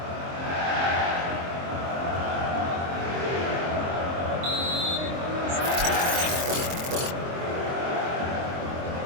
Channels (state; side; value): late; left; 23 ms